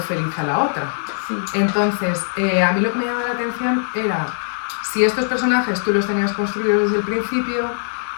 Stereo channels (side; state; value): right; silent; digital silence